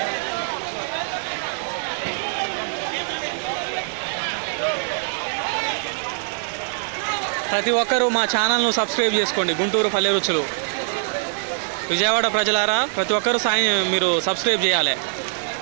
ప్రతి ఒక్కరూ మా ఛానల్ను సబ్స్క్రైబ్ చేసుకోండి. గుంటూరు పల్లె రుచులు. విజయవాడ ప్రజలారా, ప్రతి ఒక్కరూ మీరు సబ్స్క్రైబ్ చేయాలి.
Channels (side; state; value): left; silent; 63 dB below the other